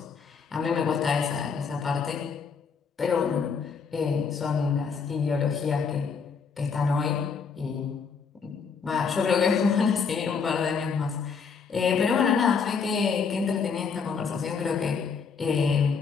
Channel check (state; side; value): quieter; right; 5.8 dB